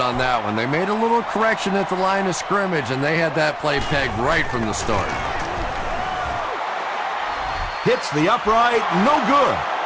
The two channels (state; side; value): identical; both; correlation 1.00